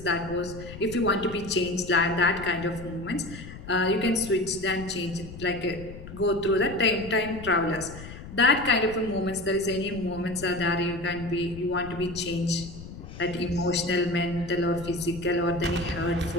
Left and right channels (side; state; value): left; noise; rumble, 13 dB below the sound